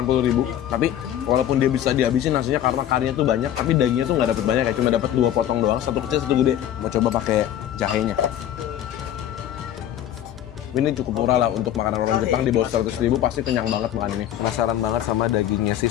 tapi walaupun dia bisa dihabisin nasinya karena karinya tuh banyak, tapi dagingnya tuh nggak dapet banyak ya, cuma dapet 2 potong doang, satu kecil satu gede. Mau coba pakai jahenya. Ini cukup murah lah untuk makanan orang Jepang, di bawah 100.000 pasti kenyang banget makan ini. Penasaran banget sama dagingnya si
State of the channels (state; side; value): quieter; right; 11.3 dB